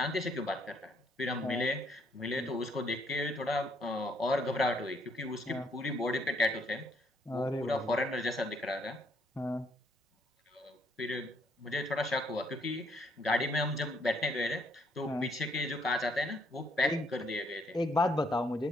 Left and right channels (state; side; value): normal; both; correlation 0.70